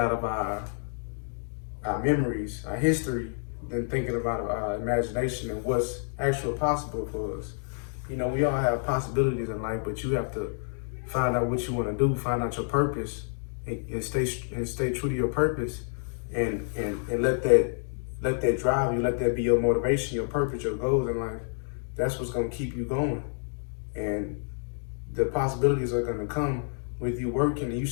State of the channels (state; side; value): silent; right; 59 dB below the other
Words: of our memories, our history, than thinking about our imagination and what's actually possible for us. You know, we all have possibilities in life, but you have to find out what you want to do, find out your purpose, and stay true to your purpose, and let that drive you, let that be your motivation, your purpose, your goals in life. That's what's gonna keep you going. And the possibilities are gonna come with you working and you